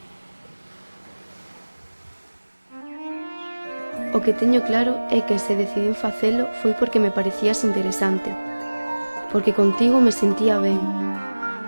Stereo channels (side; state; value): both; inverted; correlation -1.00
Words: O que teño claro é que se decidín facelo foi porque me parecías interesante, porque contigo me sentía ben,